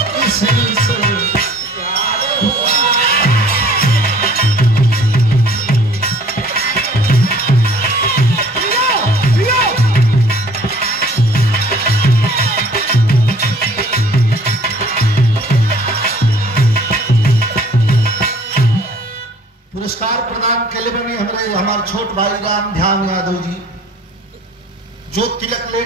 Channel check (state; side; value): normal; both; correlation 0.53